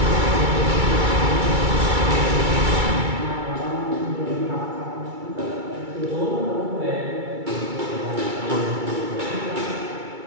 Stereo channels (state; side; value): late; left; 2.3 ms